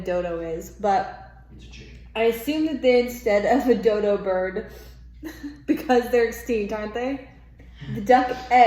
is, but it's a chicken. I assume that they, instead of a dodo bird, because they're extinct, aren't they? The duck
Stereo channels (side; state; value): both; identical; correlation 1.00